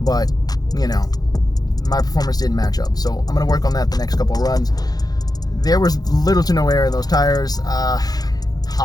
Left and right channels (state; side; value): late; right; 0.19 ms